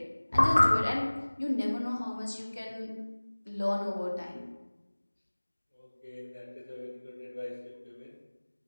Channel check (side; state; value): both; inverted; correlation -1.00